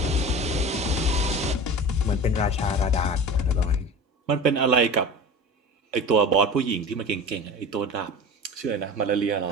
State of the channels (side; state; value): both; normal; correlation 0.34